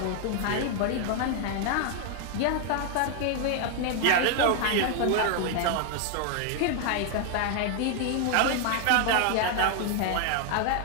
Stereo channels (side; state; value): both; different; correlation 0.00